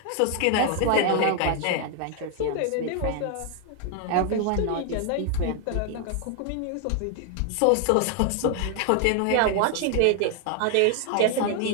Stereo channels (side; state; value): both; different; correlation 0.00